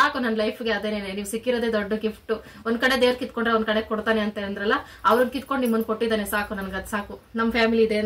ನನ್ನ ಲೈಫ್ಗೆ ಅದೇನೇನೆ, ನೀವು ಸಿಕ್ಕಿರೋದೇ ದೊಡ್ಡ ಗಿಫ್ಟ್. ಒಂದ್ ಕಡೆ ದೇವ್ರ ಕಿತ್ಕೊಂಡ್ರೆ ಒಂದ್ ಕಡೆ ಕೊಡ್ತಾನೆ ಅಂತ ಅಂದ್ರಲ್ಲ, ಅವ್ರನ್ನ ಕಿತ್ಕೊಂಡು ನಿಮ್ಮನ್ನ ಕೊಟ್ಟಿದ್ದಾನೆ ಸಾಕು. ನನ್ಗದ್ ಸಾಕು. ನಮ್ ಫ್ಯಾಮಿಲಿ ಇದೆ,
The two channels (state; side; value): identical; both; correlation 1.00